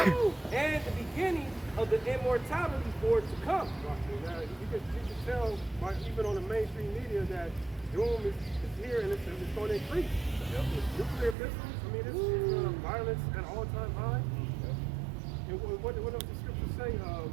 and the beginning of the immortality for it to come." You can tell, even on the mainstream media, that doom is here and it's going to increase. Yep. Nuclear missiles, I mean, this is violence at an all-time high. And what does the scripture say? No,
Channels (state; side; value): drops out; left; at 11.4 s